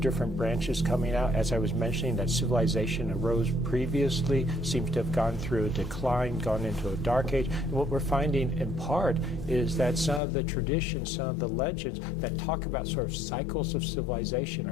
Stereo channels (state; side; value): drops out; right; at 10.2 s